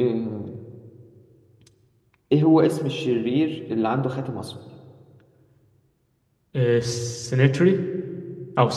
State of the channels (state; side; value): identical; both; correlation 1.00